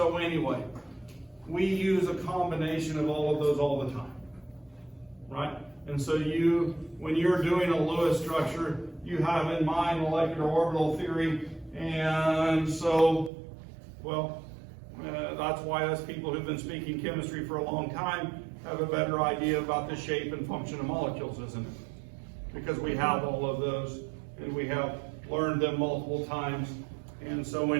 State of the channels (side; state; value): left; drops out; at 13.3 s